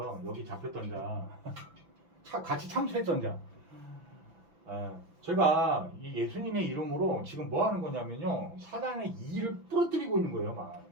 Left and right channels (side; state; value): left; late; 5.9 ms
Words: 여기 잡혔던 자 같이 참수했던 자. 제가 이 예수님의 이름으로 지금 뭐 하는 거냐면요 사단의 이를 부러뜨리고 있는 거예요. 막